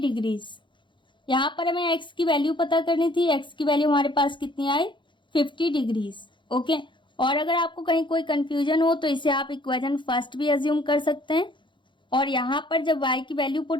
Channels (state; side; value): late; right; 0.23 ms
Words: यहाँ पर हमें x की वैल्यू पता करनी थी, x की वैल्यू हमारे पास कितनी आई 50 डिग्रीज। ओके, और अगर आपको कहीं कोई कंफ्यूजन हो तो इसे आप इक्वेशन फर्स्ट भी अज्यूम कर सकते हैं, और यहाँ पर जब y की वैल्यू